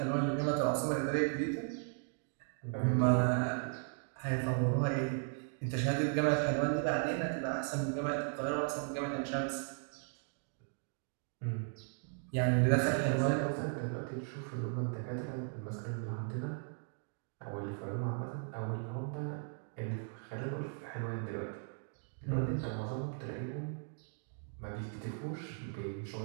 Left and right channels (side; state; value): left; silent; 53 dB below the other